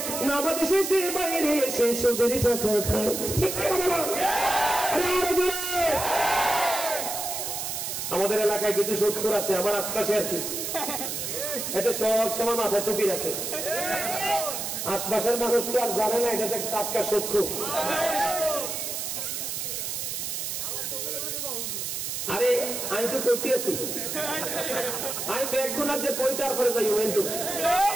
নামাজ শেষে বাইরে এসে সুদের টাকা খায়। ঠিক না? আমাদের এলাকায় কিছু সুদখোর আছে, আমার আশপাশে আর কি, এটা সব সময় মাথায় টুপি রাখে। আশপাশের মানুষ তো আর জানে না এটা টাটকা সুদখোর। আরে আমি তো কইতে আছি, আমি ব্যাগগুলার যে কইতার পরে যাই কিন্তু,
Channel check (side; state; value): right; noise; hiss, 4 dB below the sound